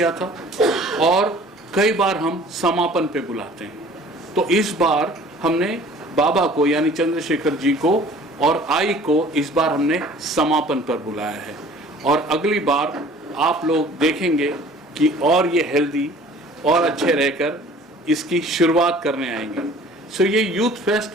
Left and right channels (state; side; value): normal; both; correlation 0.49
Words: था, और कई बार हम समापन पे बुलाते हैं। तो इस बार हमने बाबा को यानी चंद्रशेखर जी को और आई को इस बार हमने समापन पर बुलाया है, और अगली बार आप लोग देखेंगे कि और ये हेल्दी और अच्छे रहकर इसकी शुरुआत करने आएंगे। सो ये यूथ